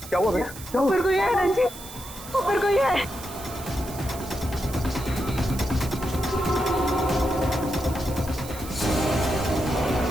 क्या हुआ भैया? क्या हुआ? ऊपर कोई है रंजीत, ऊपर कोई है।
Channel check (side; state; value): right; noise; hiss, 14 dB below the sound